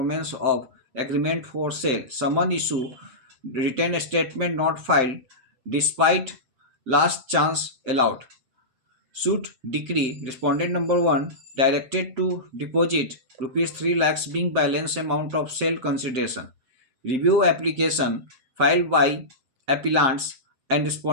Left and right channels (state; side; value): late; left; 7.7 ms